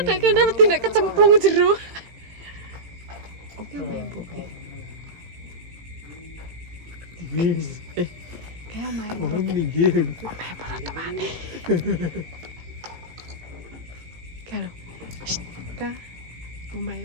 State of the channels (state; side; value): late; left; 18 ms